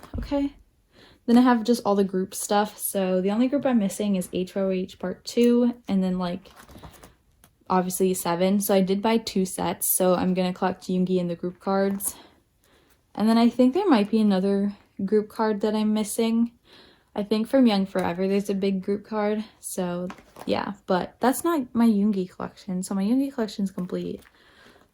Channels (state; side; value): identical; both; correlation 1.00